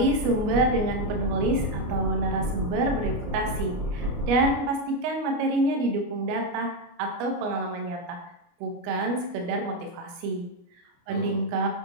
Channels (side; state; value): left; late; 29 ms